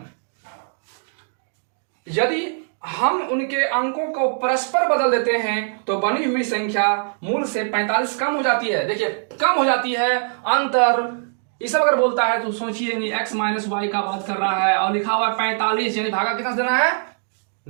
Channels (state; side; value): silent; left; digital silence